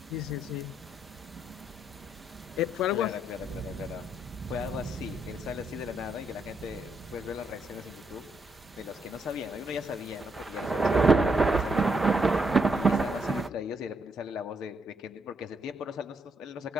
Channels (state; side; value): normal; both; correlation 0.76